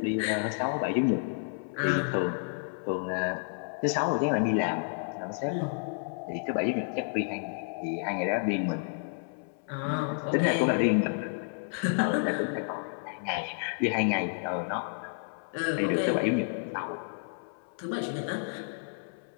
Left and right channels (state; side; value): silent; right; 57 dB below the other